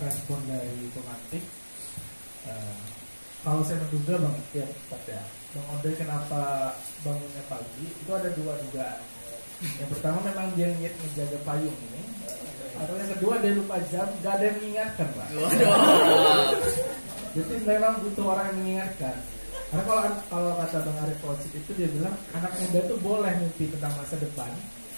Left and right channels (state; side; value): inverted; both; correlation -1.00